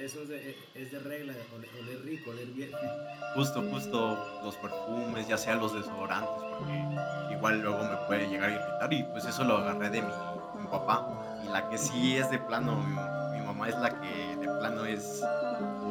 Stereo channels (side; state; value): both; identical; correlation 1.00